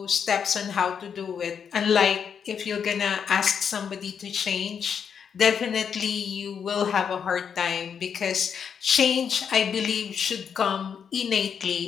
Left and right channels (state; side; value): quieter; right; 7.2 dB